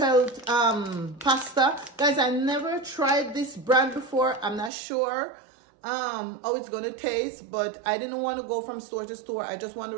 pasta. Guys, I never tried this brand before. I'm not sure how it's gonna taste, but I didn't want to go from store to store. I just want to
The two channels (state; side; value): drops out; left; at 4.7 s